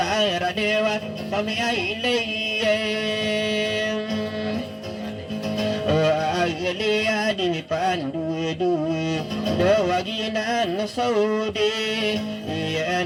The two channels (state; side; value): identical; both; correlation 1.00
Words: radewa Kami ay layem Agalia di pandu-du Dawaginan saudi